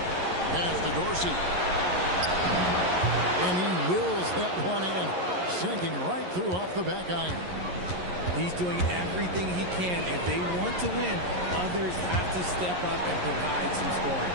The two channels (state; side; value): late; left; 11 ms